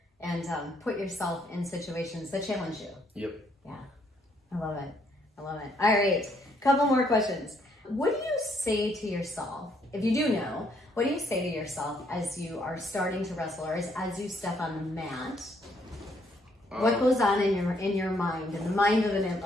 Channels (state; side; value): normal; both; correlation 0.70